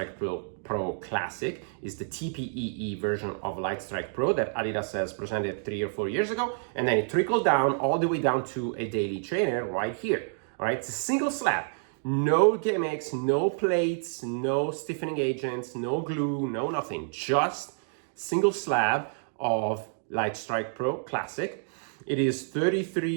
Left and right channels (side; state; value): left; silent; digital silence